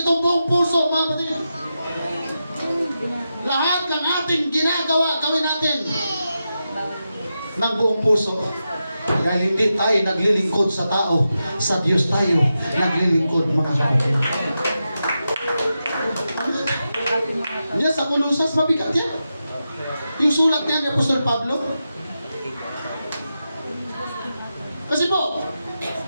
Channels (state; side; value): inverted; both; correlation -0.89